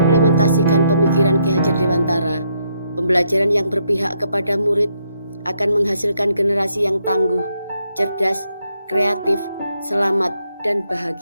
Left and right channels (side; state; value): both; inverted; correlation -0.76